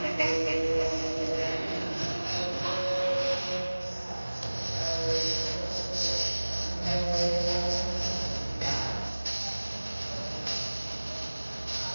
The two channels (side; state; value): both; inverted; correlation -1.00